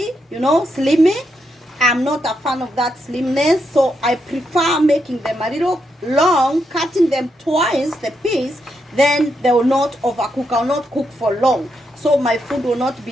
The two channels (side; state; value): both; normal; correlation 0.81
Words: you know, slimy. I'm not a fan of that slimness, so I prefer making them a little long, cutting them twice the piece, then they will not overcook. I will not cook for long, so my food will not